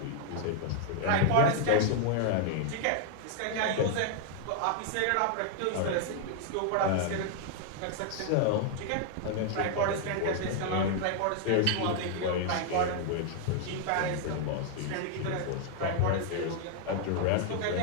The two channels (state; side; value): different; both; correlation 0.00